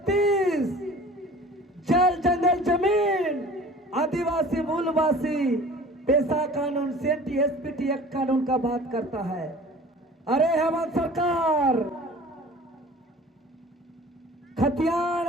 जल जंगल जमीन आदिवासी मूलवासी पेशा कानून सेंटी एसपीटी एक्ट कानून का बात करता है। अरे हेमंत सरकार खतियान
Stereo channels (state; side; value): normal; both; correlation 0.44